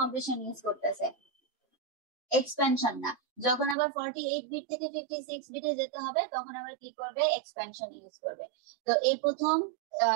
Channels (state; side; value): drops out; left; at 3.8 s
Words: ইউজ করতেছে, এক্সপেনশন না। যখন আবার 48 বিট থেকে 56 বিটে যেতে হবে তখন আবার কি করবে, এক্সপেনশন ইউজ করবে। তো এই প্রথম